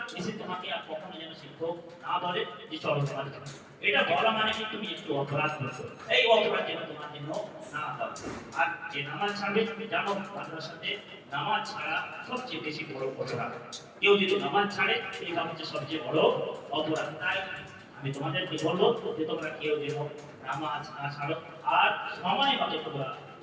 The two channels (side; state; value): both; identical; correlation 1.00